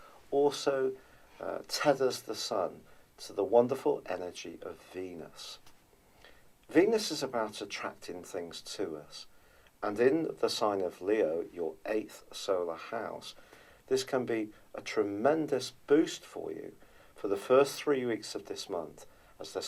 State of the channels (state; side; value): identical; both; correlation 1.00